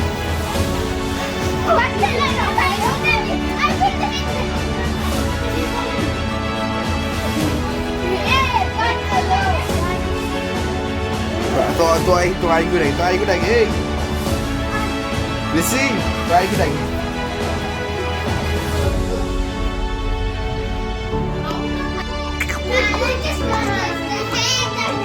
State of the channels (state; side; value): identical; both; correlation 1.00